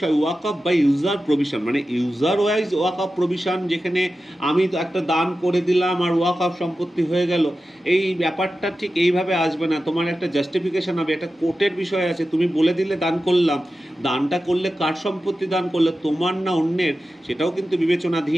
ওয়াকফ বাই ইউজার প্রভিশন, মানে ইউজার ওয়াইজ ওয়াকফ প্রভিশন, যেখানে আমি তো একটা দান করে দিলাম আর ওয়াকফ সম্পত্তি হয়ে গেল, এই ব্যাপারটা ঠিক এইভাবে আসবে না। তোমার একটা জাস্টিফিকেশন হবে, একটা কোর্টের বিষয় আছে। তুমি বলে দিলে দান করলাম, দানটা করলে কার সম্পত্তি দান করলে, তোমার না অন্যের, সেটাও কিন্তু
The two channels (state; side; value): normal; both; correlation 0.93